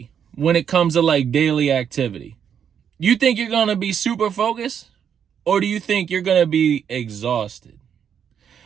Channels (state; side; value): quieter; left; 8.1 dB